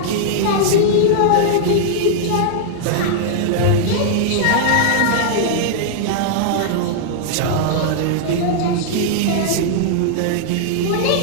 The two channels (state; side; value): different; both; correlation -0.01